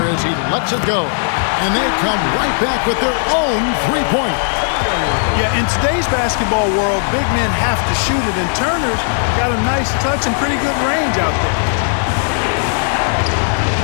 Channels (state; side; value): silent; right; digital silence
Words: as he lets it go. And they come right back with their own 3-pointer. Yeah, in today's basketball world, big men have to shoot it, and Turner's got a nice touch and pretty good range out there.